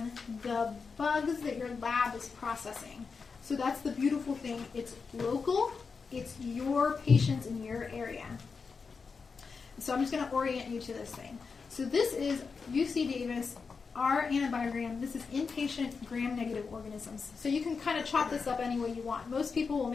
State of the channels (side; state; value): right; quieter; 5.1 dB